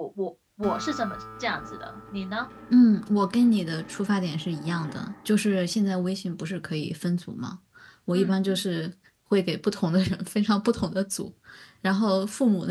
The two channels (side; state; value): both; identical; correlation 1.00